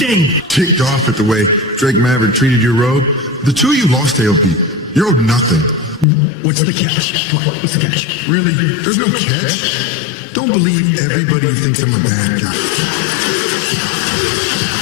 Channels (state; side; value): drops out; right; at 6.1 s